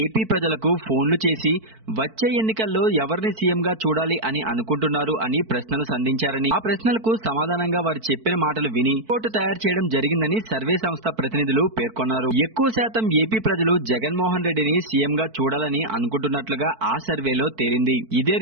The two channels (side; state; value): left; late; 4.5 ms